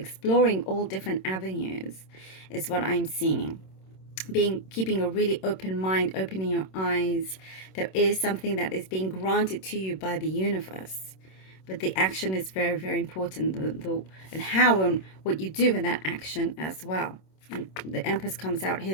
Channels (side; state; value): right; late; 26 ms